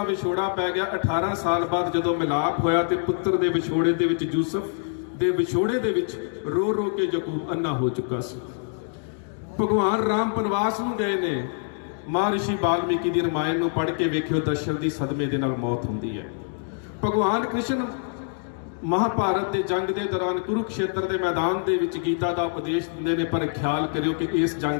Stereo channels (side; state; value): right; silent; digital silence